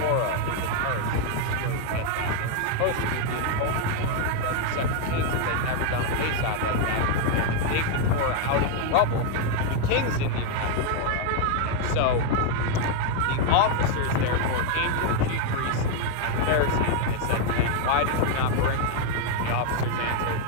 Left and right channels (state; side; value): different; both; correlation 0.00